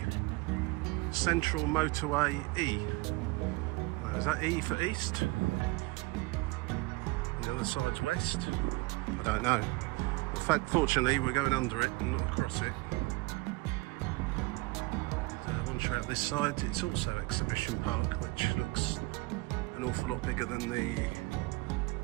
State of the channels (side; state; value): left; quieter; 23.3 dB